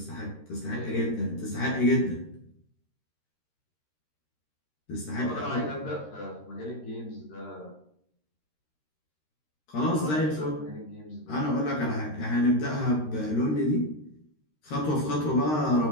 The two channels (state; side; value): late; right; 13 ms